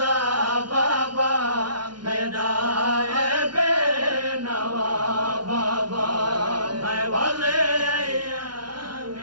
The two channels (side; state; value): left; late; 0.71 ms